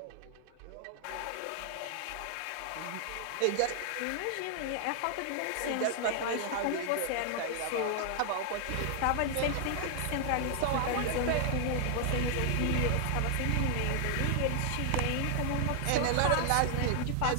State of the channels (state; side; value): different; both; correlation 0.00